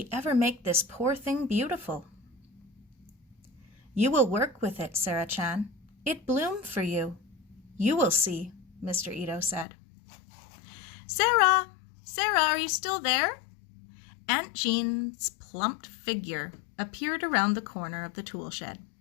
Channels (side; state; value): right; drops out; at 9.7 s